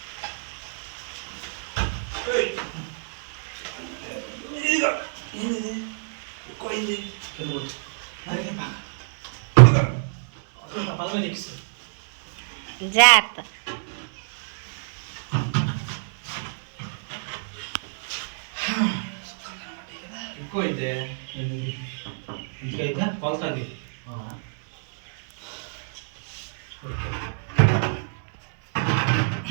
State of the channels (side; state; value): left; silent; digital silence